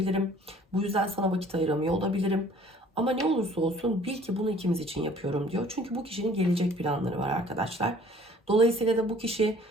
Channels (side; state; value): both; normal; correlation 0.53